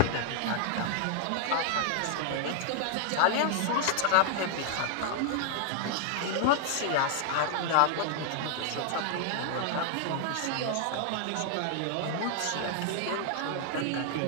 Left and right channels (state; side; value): different; both; correlation 0.00